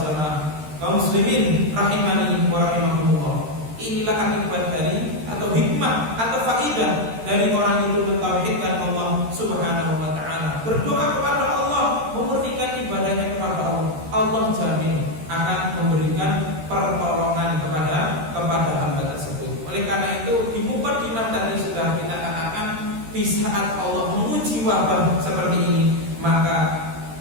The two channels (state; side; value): late; left; 13 ms